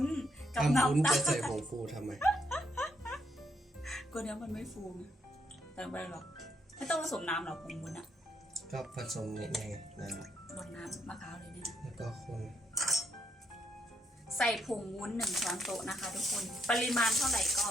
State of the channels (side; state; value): both; normal; correlation 0.76